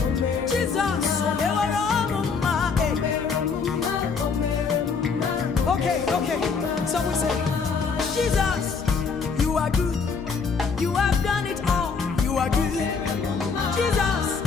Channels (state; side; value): quieter; right; 5.3 dB